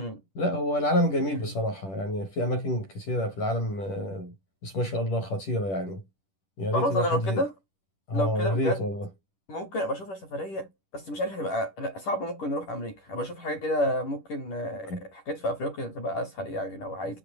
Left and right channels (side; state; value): right; late; 10 ms